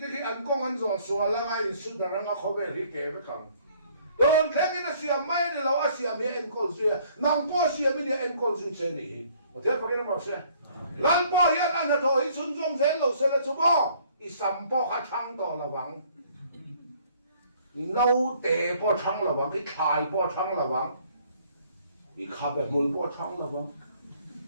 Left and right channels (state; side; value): inverted; both; correlation -0.60